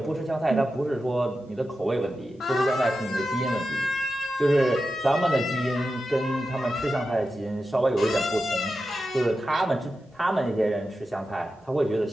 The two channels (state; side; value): normal; both; correlation 0.91